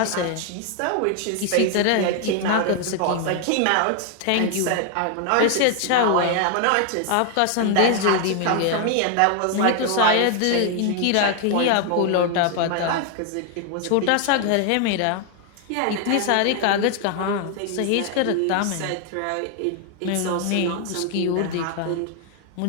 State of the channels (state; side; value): different; both; correlation 0.00